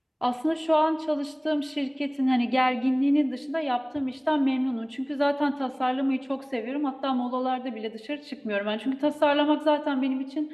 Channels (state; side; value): identical; both; correlation 1.00